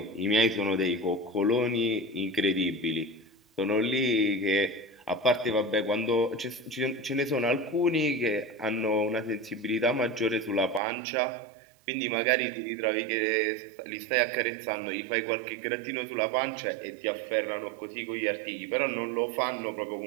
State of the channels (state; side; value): drops out; left; at 10.8 s